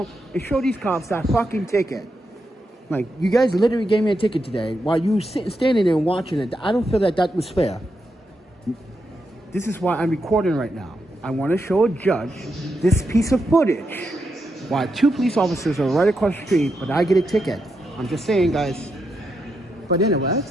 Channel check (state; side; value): normal; both; correlation 0.84